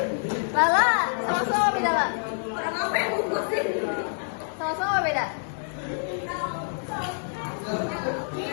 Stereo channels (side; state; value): right; silent; digital silence